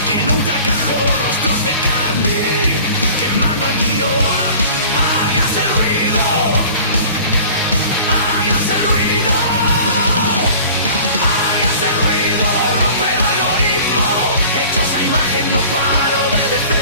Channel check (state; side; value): inverted; both; correlation -0.44